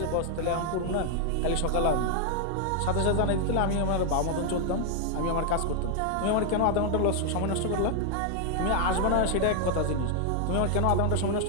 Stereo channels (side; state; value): both; different; correlation 0.00